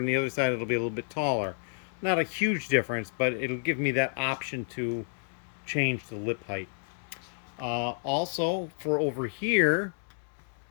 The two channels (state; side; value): silent; right; digital silence